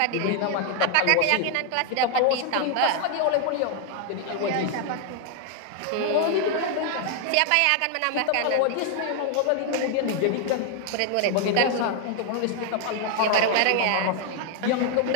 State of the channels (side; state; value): both; different; correlation 0.00